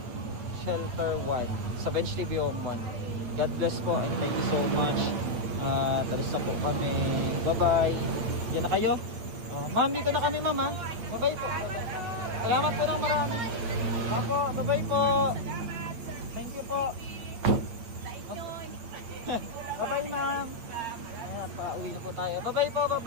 Shelter 1 sa Bench TV Home 1. God bless po and thank you so much. Talis na po kami. Bye bye. Diyan na kayo. Ma'am, dito na kami ma'am ha. Bye bye po. Salamat po ng marami. Ako, bye bye po. Salamat, sir. Thank you po. Sa inyo. Bye bye ma'am. At pauwi na po tayo. Bye bye po, bye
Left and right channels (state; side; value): late; left; 8.6 ms